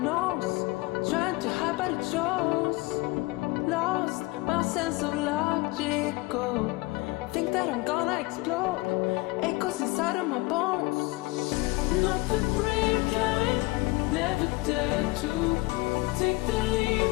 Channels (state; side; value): quieter; right; 22.7 dB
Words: Trying to hide but it shows. Lost my sense of logical. Think that I'm gonna explode. Echoes inside of my bones. Not the brave kind, never dare to take the leap